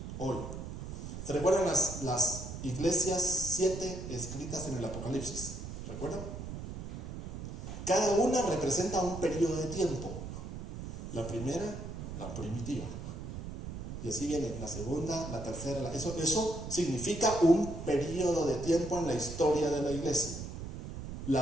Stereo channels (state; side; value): noise; right; rumble, 8 dB below the sound